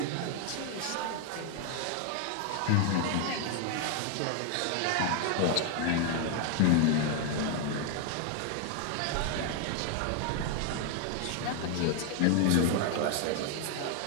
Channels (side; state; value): both; different; correlation 0.00